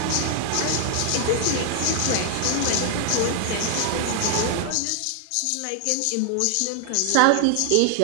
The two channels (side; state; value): both; different; correlation 0.00